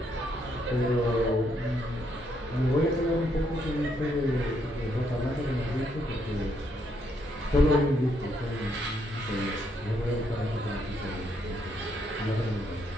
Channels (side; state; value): both; normal; correlation 0.74